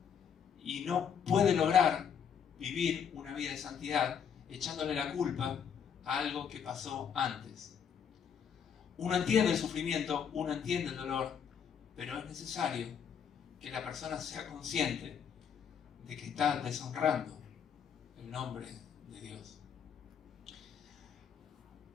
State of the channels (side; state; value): right; quieter; 7.6 dB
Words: y no puede lograr vivir una vida de santidad echándole la culpa a algo que pasó antes. Uno entiende el sufrimiento, uno entiende el dolor, pero es necesario que la persona sea consciente de que está deshonrando el nombre de Dios.